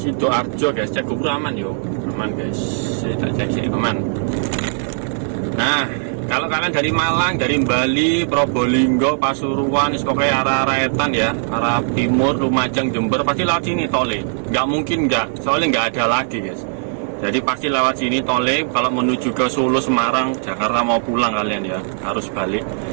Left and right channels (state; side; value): silent; left; 64 dB below the other